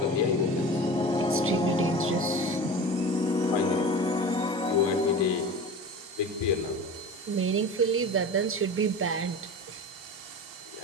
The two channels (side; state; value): both; normal; correlation 0.33